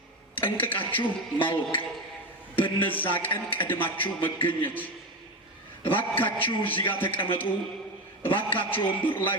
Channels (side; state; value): both; normal; correlation 0.19